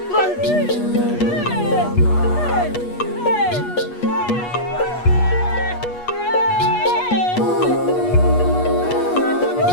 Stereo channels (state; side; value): late; right; 8.3 ms